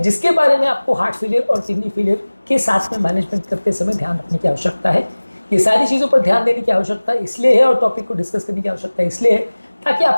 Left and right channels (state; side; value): inverted; both; correlation -1.00